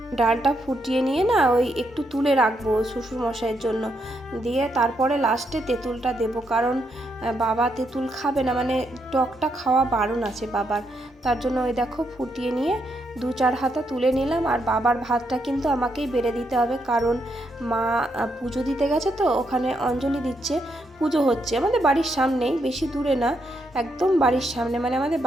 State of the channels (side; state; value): both; normal; correlation 0.79